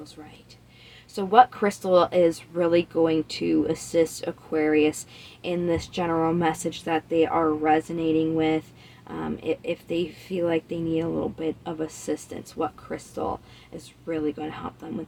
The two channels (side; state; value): both; identical; correlation 1.00